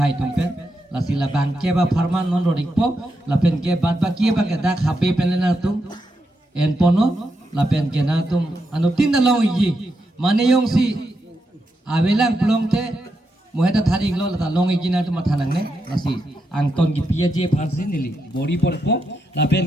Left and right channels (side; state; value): both; normal; correlation 0.84